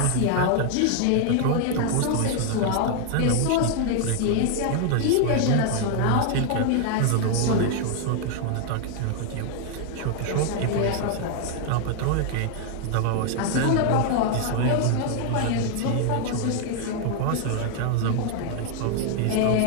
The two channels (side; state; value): both; different; correlation 0.00